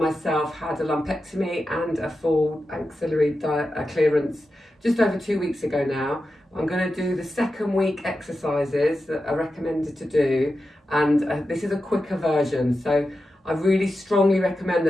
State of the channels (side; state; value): both; normal; correlation 0.91